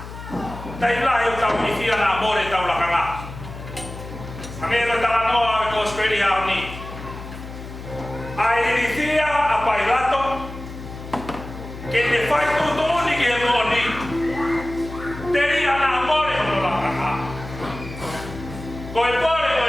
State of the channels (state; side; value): noise; left; hum, 12 dB below the sound